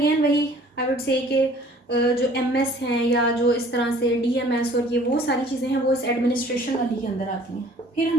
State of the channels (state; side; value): normal; both; correlation 0.53